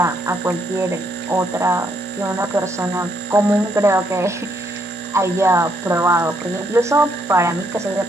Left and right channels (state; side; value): normal; both; correlation 0.73